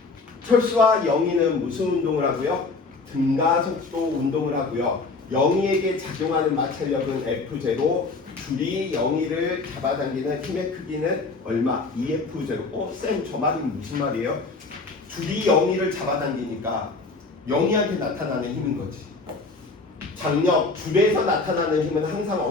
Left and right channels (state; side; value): quieter; right; 3.9 dB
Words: 철수와 영희는 무슨 운동을 하고요? 등가속도 운동을 하고요. 영희에게 작용하는 마찰력은 F0, 줄이 영희를 잡아당기는 힘의 크기는 얼마? EF0. 쌤, 저 말이 무슨 말이에요? 줄이 영희를 잡아당기니까 영희한테 나타나는 힘인 거지. 장력, 줄에서 나타나는 힘은 항상